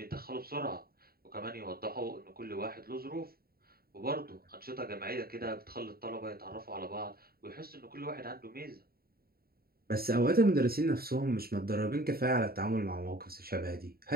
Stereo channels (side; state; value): left; late; 0.44 ms